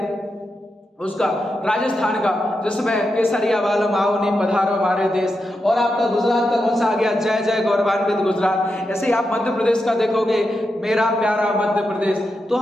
उसका राजस्थान का, जिसमें केसरिया वालम आओ नी पधारो हमारे देश, और आपका गुजरात का कौन सा आ गया, जय जय गौरवान्वित गुजरात। ऐसे ही आप मध्य प्रदेश का देखोगे, मेरा प्यारा मध्य प्रदेश। तो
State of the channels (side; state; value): both; normal; correlation 0.87